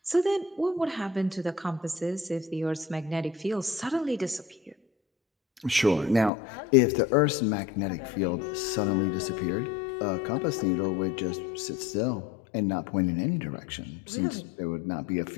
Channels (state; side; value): drops out; right; at 6.3 s